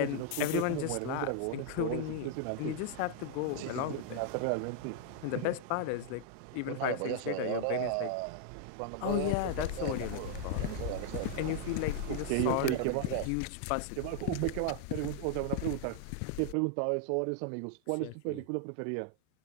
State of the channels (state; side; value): different; both; correlation 0.00